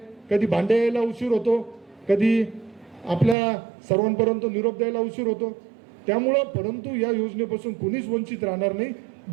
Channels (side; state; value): left; drops out; at 3.4 s